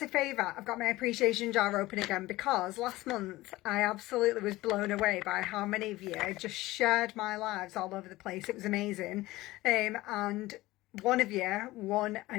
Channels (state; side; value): quieter; right; 18.4 dB